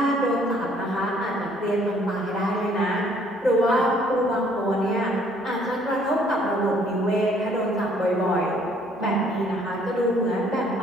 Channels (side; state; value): both; normal; correlation 0.62